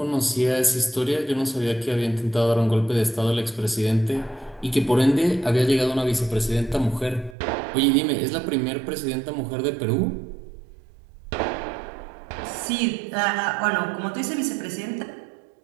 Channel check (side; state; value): left; drops out; at 7.4 s